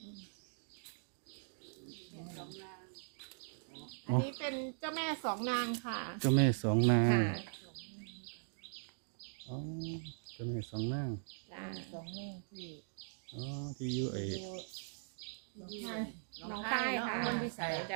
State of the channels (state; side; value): silent; left; digital silence